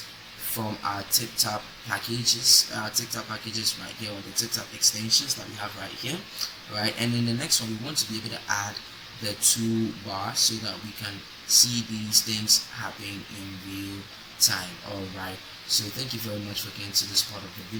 from our tip-top packages, right here, or the tip-top extensions that we have right here. Right, and in the next one we want to be able to add the toolbar so that we can see these things happening in real time. Alright, so thank you very much for getting to this part of the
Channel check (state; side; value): identical; both; correlation 1.00